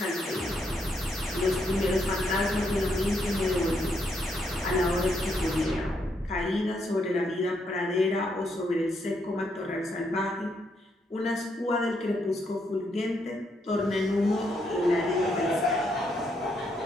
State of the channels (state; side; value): normal; both; correlation 0.76